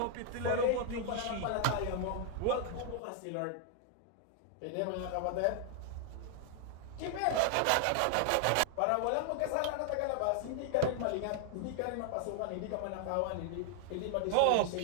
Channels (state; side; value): different; both; correlation 0.00